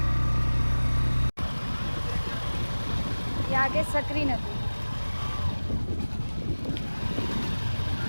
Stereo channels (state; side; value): inverted; both; correlation -1.00